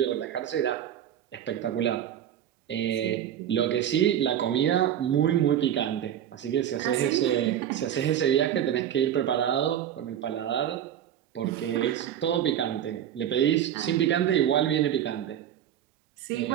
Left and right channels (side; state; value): left; quieter; 10.4 dB